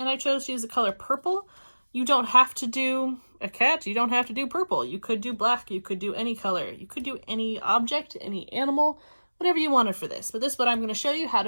I chose to use the color purple. You don't have to do a cat, you don't have to do purple. You could do black, you could do any color, you could do any object, any animal, whatever you wanted for this. But this is what I'm going to show you how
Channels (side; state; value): both; inverted; correlation -1.00